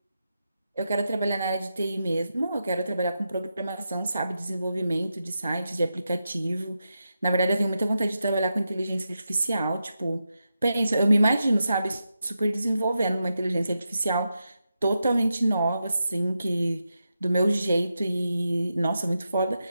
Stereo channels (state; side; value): inverted; both; correlation -0.88